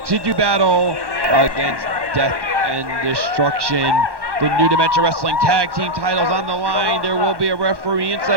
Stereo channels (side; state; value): left; late; 1.1 ms